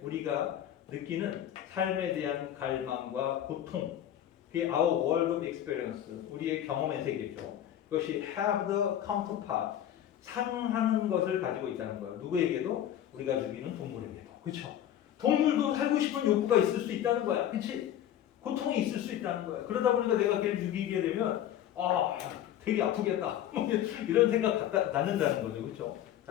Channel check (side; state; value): right; quieter; 11.1 dB